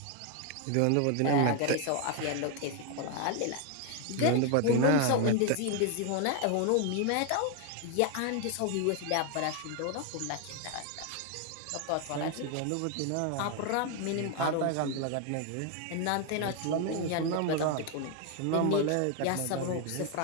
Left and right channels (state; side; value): different; both; correlation 0.01